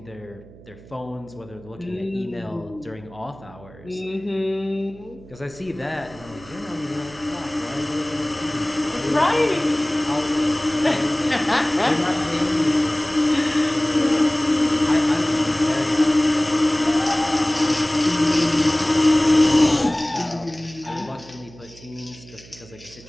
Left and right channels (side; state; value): right; noise; hum, 21 dB below the sound